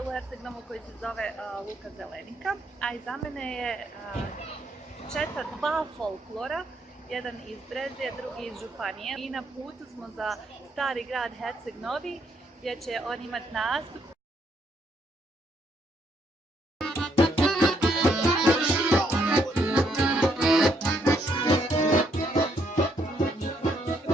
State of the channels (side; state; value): both; normal; correlation 0.73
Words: Herceg Novog koji se zove Luka Zelenika, a iza mene je četa dva folklora, jedan iz Brezja, drugi iz Županije. I na putu smo za stari grad Herceg Novi, gdje će on imati nastup.